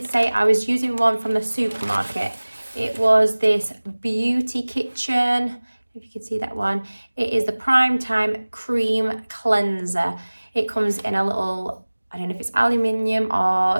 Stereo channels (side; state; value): both; inverted; correlation -1.00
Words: say I was using one from the supermarket. It was this Beauty Kitchen, if you can see that one. It is the Prime Time Cream Cleanser. It comes in a little, I don't know if it's aluminium